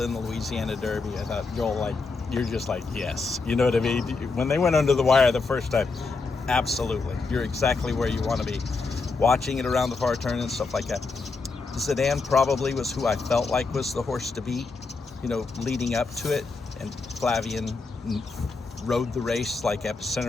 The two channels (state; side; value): quieter; right; 4.1 dB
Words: in the Louisiana Derby. I thought, you're just like, yes, you know what I mean? When they went under the wire the first time, absolutely, you're exactly where you want to be. Watching it around the far turn and stuff like that. Zidane probably was who I felt like was the horse to beat, leading up to it, and Flavian rode the race like